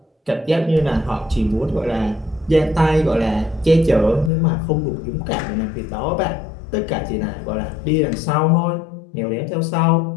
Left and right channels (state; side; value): drops out; right; at 4.3 s